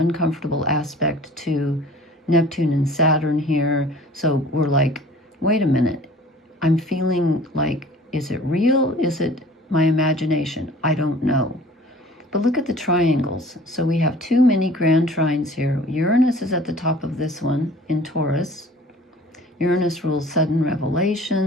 aspect to Neptune and Saturn here. So we're like, wait a minute. I'm feeling like, is it real? Is it my imagination? I don't know. But look at the triangles. So we have two mini grand trines here. Uranus is at the top of this one in Taurus. Uranus rules sudden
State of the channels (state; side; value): normal; both; correlation 0.48